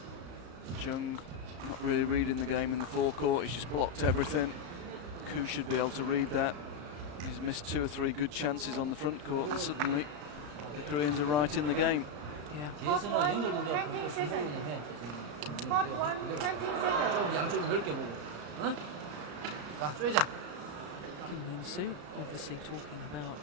Jung not really reading the game in the forecourt. He's just blocked everything. Koo should be able to read that. He's missed 2 or 3 good chances on the front court, and suddenly the Koreans are right in the game. Yeah. Hot 1, 20 seconds. Hot 1, 20 seconds. 양쪽이 넓게 보고. 응? 자, 쏘자. Kim Moon-soo obviously talking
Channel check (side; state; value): left; late; 34 ms